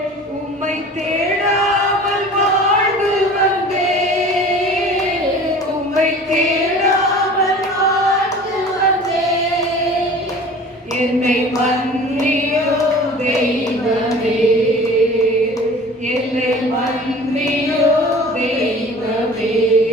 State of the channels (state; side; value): normal; both; correlation 0.43